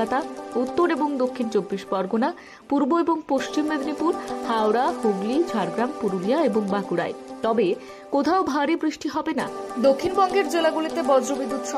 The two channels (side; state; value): both; identical; correlation 1.00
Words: উত্তর এবং দক্ষিণ 24 পরগনা, পূর্ব এবং পশ্চিম মেদিনীপুর, হাওড়া, হুগলি, ঝাড়গ্রাম, পুরুলিয়া এবং বাঁকুড়ায়। তবে কোথাও ভারী বৃষ্টি হবে না। দক্ষিণবঙ্গের জেলাগুলিতে বজ্রবিদ্যুৎ